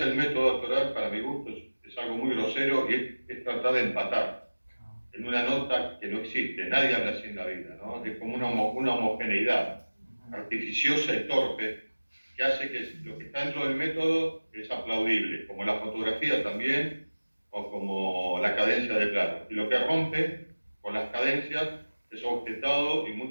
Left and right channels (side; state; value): both; inverted; correlation -1.00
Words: el método actoral, para mi gusto, es algo muy grosero y es tratar de empatar en una nota que no existe. Nadie habla así en la vida, ¿no? Es como una homogeneidad artificiosa y torpe que hace que lo que está dentro del método es aplaudible, como la fotografía también, o como la cadencia de plano. Y lo que rompe con las cadencias es objetado, y